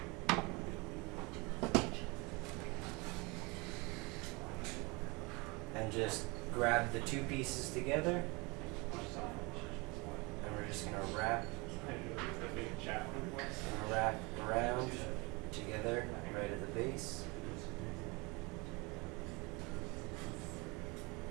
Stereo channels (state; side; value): quieter; left; 27.0 dB